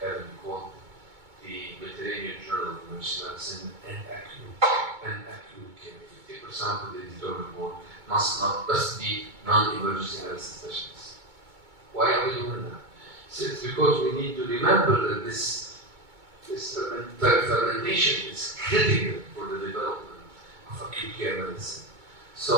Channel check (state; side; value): late; left; 2.2 ms